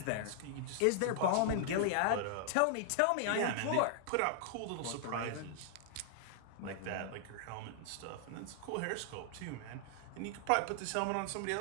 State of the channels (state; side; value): different; both; correlation -0.01